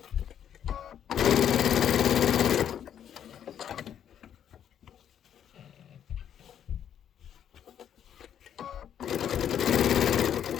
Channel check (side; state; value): right; quieter; 9.4 dB